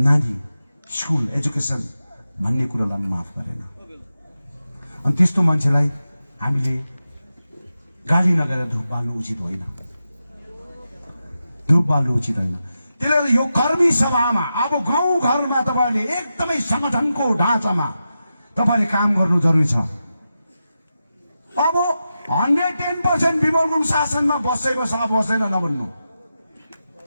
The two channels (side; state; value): both; inverted; correlation -0.90